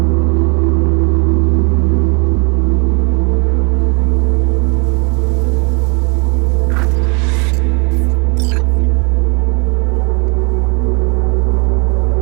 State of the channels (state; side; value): quieter; left; 32.0 dB